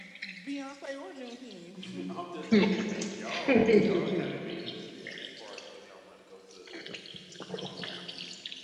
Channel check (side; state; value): both; identical; correlation 1.00